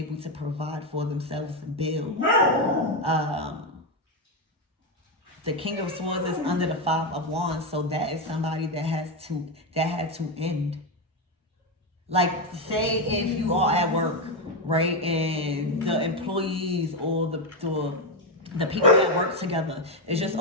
to provide for themselves and build. The King of Swords is under the Five of Wands, so that is somebody that had to end. Like, say if you are at work, right, and the employees or the people that work together is just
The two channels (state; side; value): normal; both; correlation 0.07